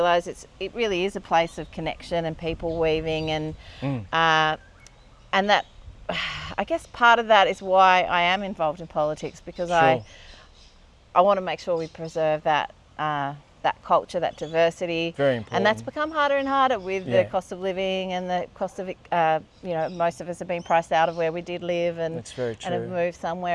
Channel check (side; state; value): both; identical; correlation 1.00